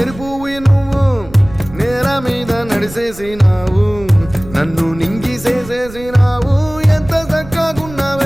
నువ్వు నేల మీద నడిసేసినావు నన్ను నింగిసేసేసినావు ఎంత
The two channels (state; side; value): noise; right; rumble, 16 dB below the sound